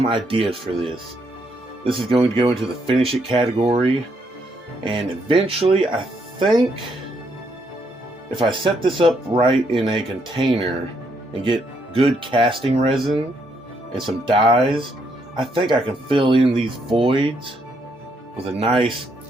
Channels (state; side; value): normal; both; correlation 0.74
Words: ideas for this. This is going to go into the finish it category, and eventually I think if I set this up right in a container and get good casting resin and some dyes, I think I can fill in these voids with a nice,